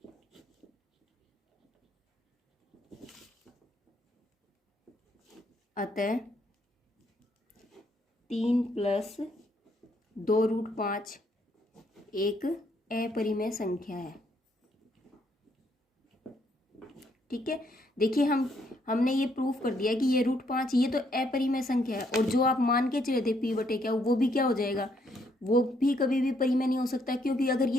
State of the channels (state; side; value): normal; both; correlation 0.71